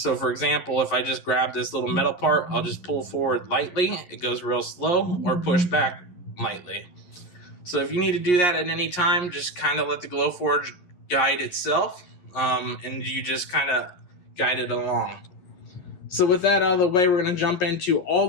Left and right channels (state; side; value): late; right; 11 ms